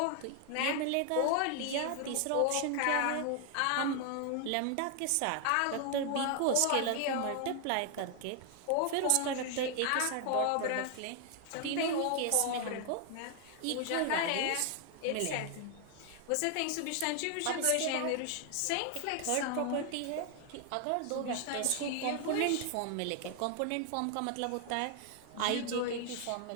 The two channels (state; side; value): different; both; correlation 0.00